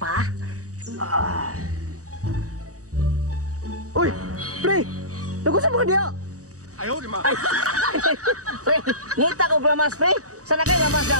Uy, pre. Naku sa mga diya. Ayaw, di ma. Ay. Pre, ngita ko glamas, pre. Sana kay glamas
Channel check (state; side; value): late; left; 0.66 ms